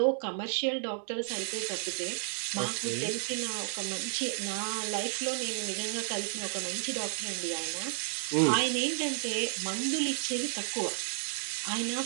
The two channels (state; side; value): silent; left; digital silence